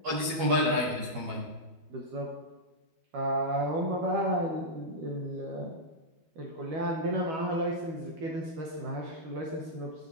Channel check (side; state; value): left; late; 12 ms